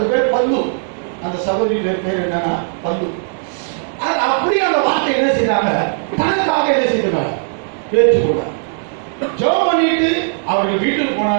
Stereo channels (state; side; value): silent; left; digital silence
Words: பேர் பந்து. அந்த சகோதரி பேர் என்னன்னா பந்து. அது அப்படியே அந்த வார்த்தை என்ன செய்தாங்க, தனக்காக என்ன செய்தாங்க, பேச்சுக்கூட ஜெபம் பண்ணிட்டு அவர்கள் வீட்டுக்கு